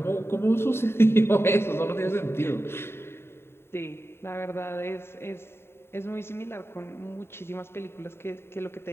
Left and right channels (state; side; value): late; right; 0.12 ms